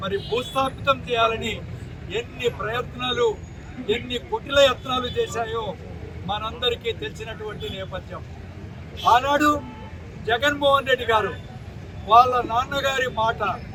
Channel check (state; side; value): identical; both; correlation 1.00